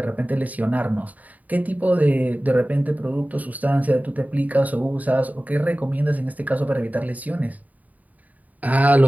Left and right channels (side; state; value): left; late; 0.075 ms